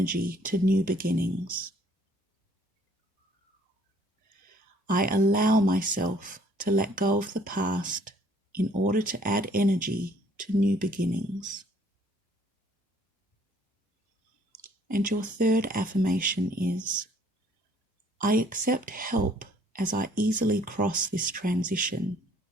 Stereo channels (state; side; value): normal; both; correlation 0.59